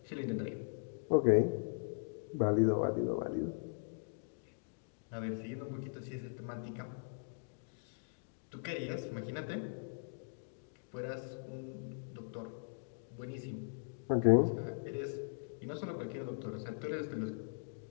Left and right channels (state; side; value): silent; right; digital silence